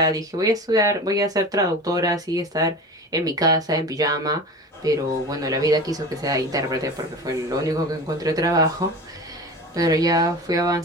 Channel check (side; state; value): both; normal; correlation 0.33